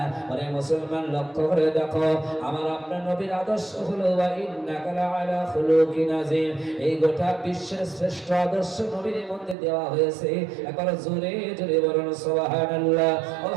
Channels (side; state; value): left; drops out; at 9.6 s